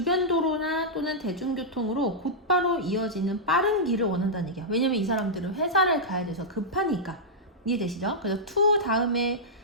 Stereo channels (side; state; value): both; normal; correlation -0.09